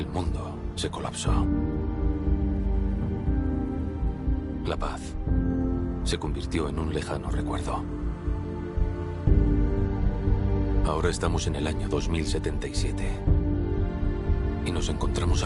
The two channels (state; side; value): identical; both; correlation 1.00